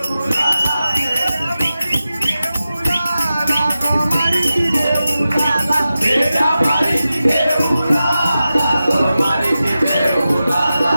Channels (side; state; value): both; inverted; correlation -0.93